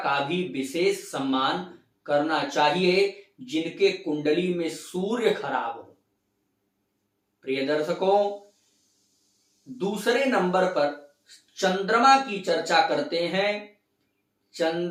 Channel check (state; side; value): identical; both; correlation 1.00